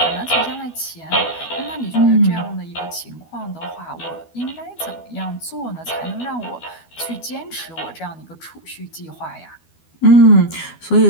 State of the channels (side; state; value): right; late; 12 ms